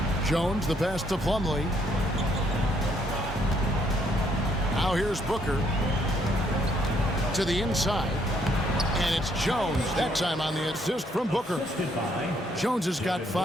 Jones, the pass to Plumlee. Now here's Booker to the inside. And it's Jones, that time on the assist from Booker. Jones has got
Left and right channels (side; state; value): both; normal; correlation 0.70